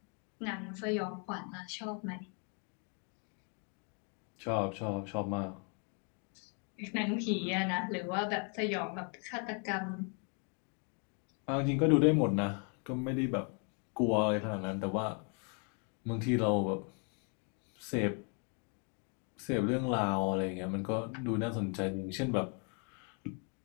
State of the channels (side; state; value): right; quieter; 38.1 dB